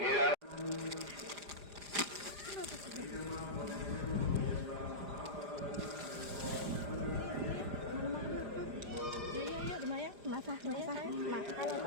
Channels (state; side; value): late; left; 4.9 ms